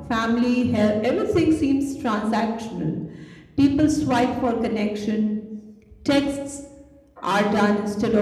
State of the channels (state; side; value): identical; both; correlation 1.00